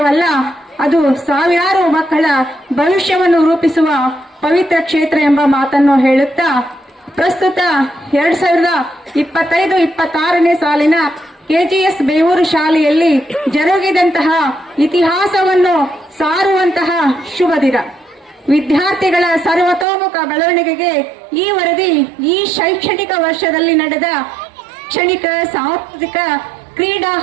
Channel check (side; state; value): left; drops out; at 19.9 s